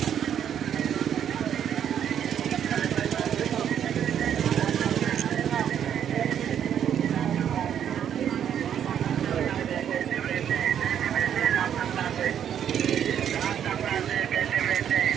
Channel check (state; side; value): quieter; left; 9.3 dB